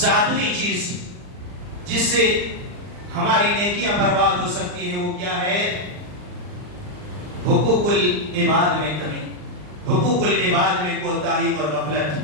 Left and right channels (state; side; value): late; left; 39 ms